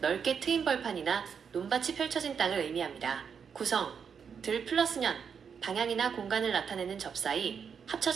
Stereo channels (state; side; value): quieter; left; 6.7 dB